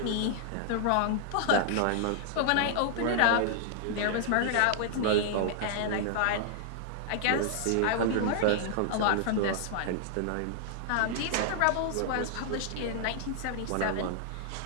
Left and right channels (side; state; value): both; different; correlation -0.01